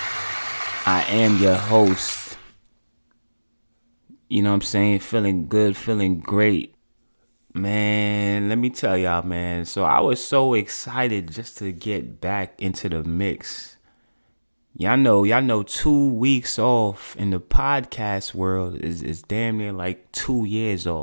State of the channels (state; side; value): inverted; both; correlation -1.00